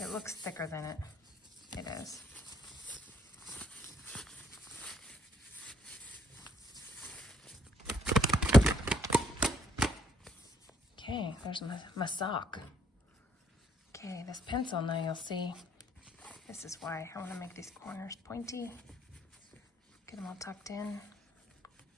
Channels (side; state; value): both; normal; correlation 0.67